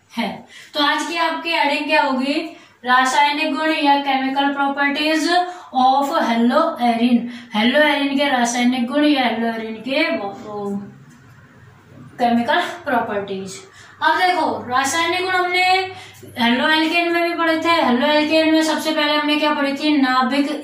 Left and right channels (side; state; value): both; identical; correlation 1.00